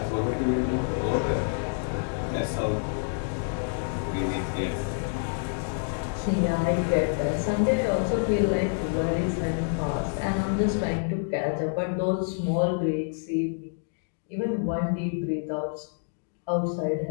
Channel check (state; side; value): silent; right; digital silence